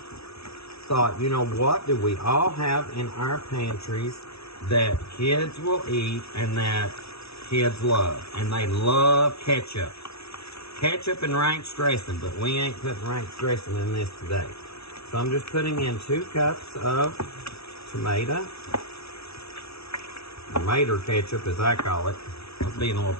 thought, you know, what do we all have in our pantries that kids will eat and that kids love? And they love ketchup. Ketchup and ranch dressing, but we ain't putting ranch dressing in this today. So I'm just putting in 2 cups of tomato ketchup, as I call it. I was being a little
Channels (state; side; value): late; right; 0.78 ms